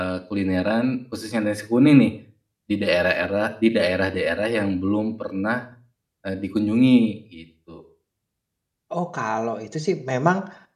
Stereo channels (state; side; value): identical; both; correlation 1.00